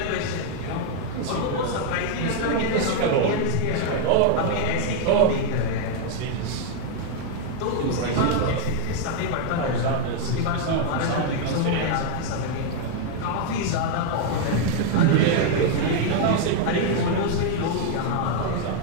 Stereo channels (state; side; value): different; both; correlation 0.00